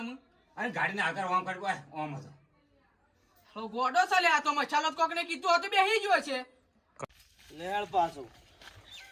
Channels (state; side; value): identical; both; correlation 1.00